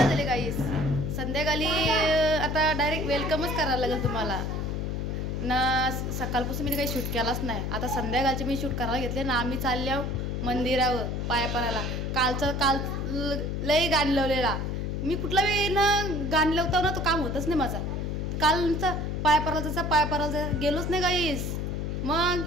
झाली गाईज. संध्याकाळी आता डायरेक्ट वेलकमच करायला लागेल तुम्हाला ना. सकाळपासून मी काही शूट केलाच नाही. आता संध्याकाळचे मी शूट करायला घेतले ना. आम्ही चालल्या मंदिरावर पाया पडायला. काल लई गाण लावलेला मी. कुठला वेळी ना गाण लावता ना तो काम होतच नाही माझा. कालचा पाया पडायचा गेलोच नाही गाईस. मग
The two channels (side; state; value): left; noise; hum, 2 dB below the sound